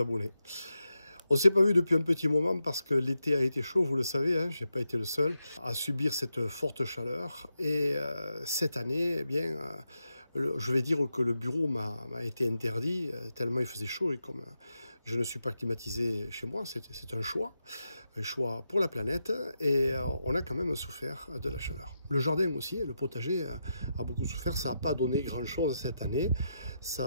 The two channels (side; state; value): both; inverted; correlation -0.86